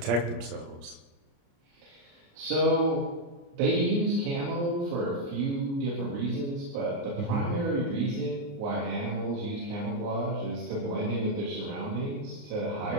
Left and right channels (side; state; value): left; late; 29 ms